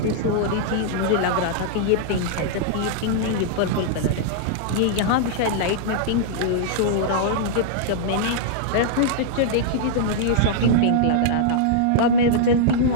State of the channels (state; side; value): different; both; correlation -0.02